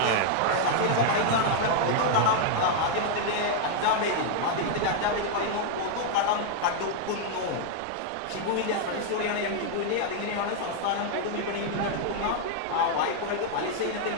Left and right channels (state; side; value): different; both; correlation 0.00